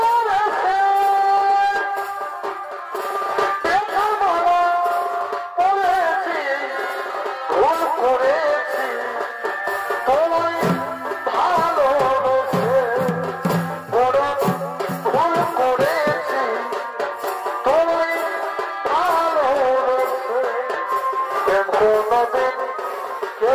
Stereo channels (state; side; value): identical; both; correlation 1.00